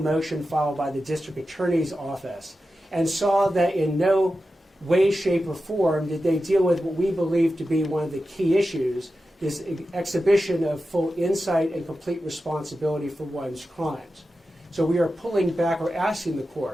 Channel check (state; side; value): normal; both; correlation 0.92